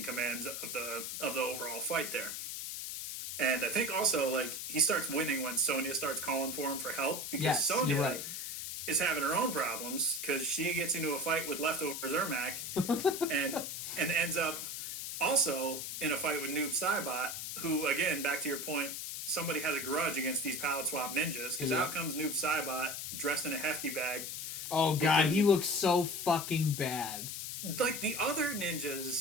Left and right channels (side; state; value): left; noise; hiss, 5 dB below the sound